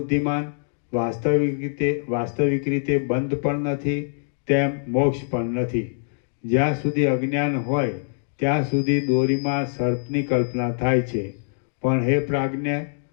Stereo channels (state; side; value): silent; right; digital silence